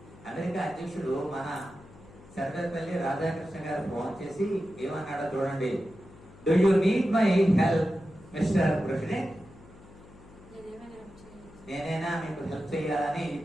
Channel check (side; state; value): left; noise; hum, 21 dB below the sound